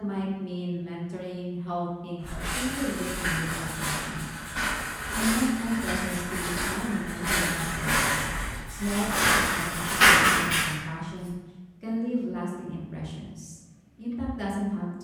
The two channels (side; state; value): both; identical; correlation 1.00